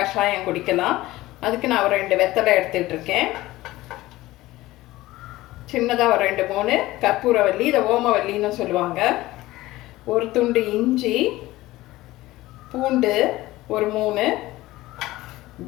குடிக்கலாம். அதுக்கு நான் ஒரு 2 வெத்தலை எடுத்துகிட்டு இருக்கேன். சின்னதாக ஒரு 2-3 கற்பூரவல்லி, இதை ஓமவல்லின்னு சொல்லுவாங்க. ஒரு துண்டு இஞ்சி, பூண்டு ஒரு 3,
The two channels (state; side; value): quieter; right; 17.7 dB